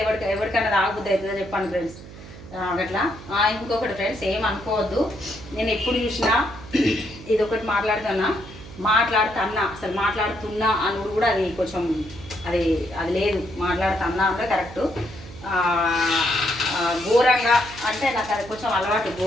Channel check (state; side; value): noise; right; hum, 16 dB below the sound